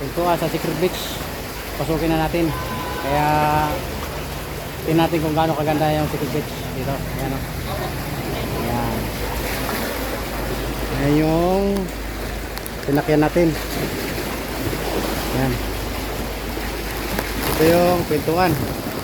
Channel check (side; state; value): both; identical; correlation 1.00